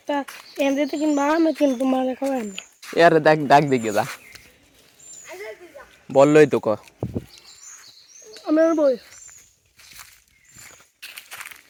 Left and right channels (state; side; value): identical; both; correlation 1.00